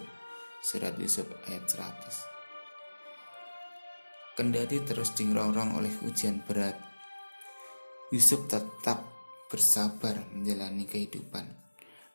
surat Yusuf ayat 100. Kendati terus dirongrong oleh ujian berat, Yusuf tetap bersabar menjalani kehidupan.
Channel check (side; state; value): both; inverted; correlation -1.00